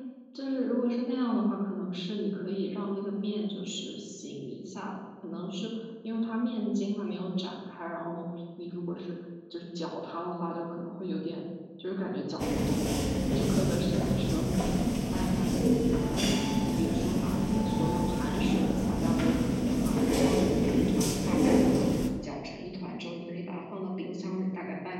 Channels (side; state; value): both; identical; correlation 1.00